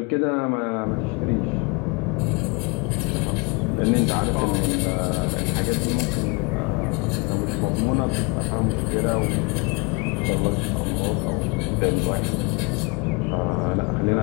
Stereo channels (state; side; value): quieter; right; 30.4 dB